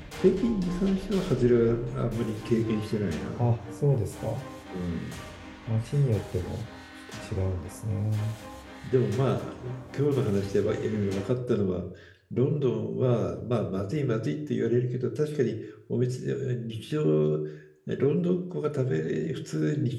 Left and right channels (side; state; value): both; identical; correlation 1.00